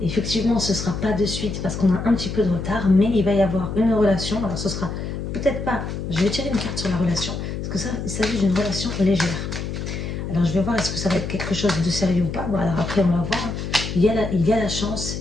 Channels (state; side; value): noise; left; hum, 5 dB below the sound